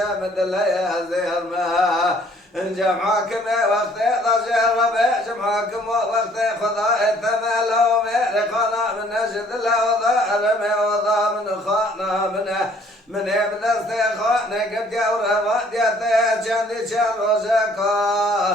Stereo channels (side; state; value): both; normal; correlation 0.59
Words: مدليا زير ما جمعكم وقت ضجر ربع جمعكم وقت خضاء ثملوا مرقنا من نجد لا وضع من خانا من ابن استخانه قد يورا وديته جندي